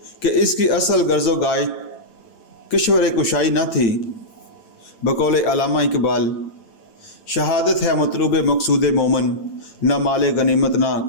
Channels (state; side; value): late; right; 8.9 ms